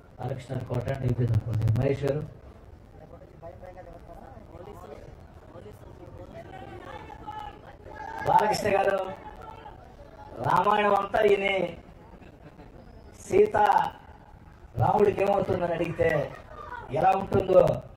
బాలకృష్ణ కోట అయిపోయింది అనుకోండి, మహేష్ గారు, బాలకృష్ణ గారు, రామాయణం అంతా ఈయన సీత రాముడికి ఏమవుతుందని అడిగితే ఎలా ఉంటుందో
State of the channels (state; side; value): identical; both; correlation 1.00